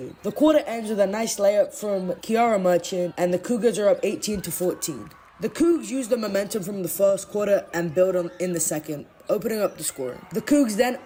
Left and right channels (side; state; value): both; identical; correlation 1.00